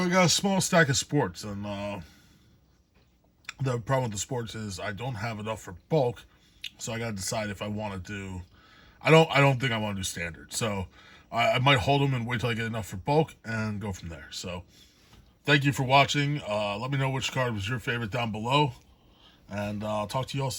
got a small stack of sports, and the problem with the sports is I don't have enough for bulk, so I got to decide if I want to do. I don't think I want to do standard, so I might hold them and wait till I get enough for bulk and go from there. So thank you for watching. Let me know which card was your favorite down below, and I'll talk to you all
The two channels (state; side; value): identical; both; correlation 1.00